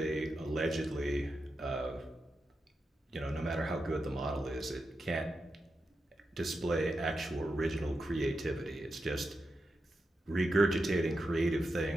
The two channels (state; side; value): normal; both; correlation 0.88